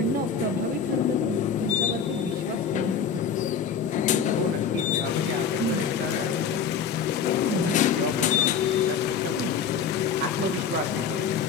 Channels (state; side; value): quieter; right; 6.6 dB